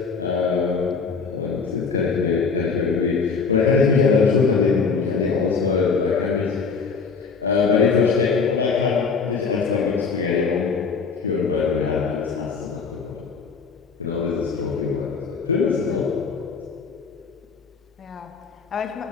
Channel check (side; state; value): right; quieter; 5.2 dB